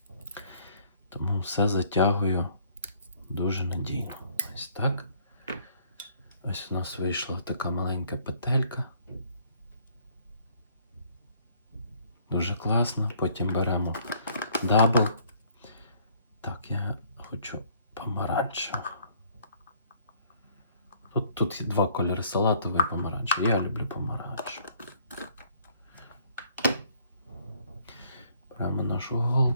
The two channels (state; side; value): inverted; both; correlation -0.62